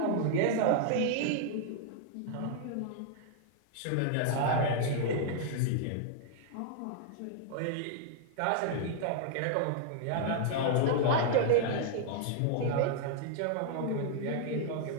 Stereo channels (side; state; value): both; different; correlation 0.00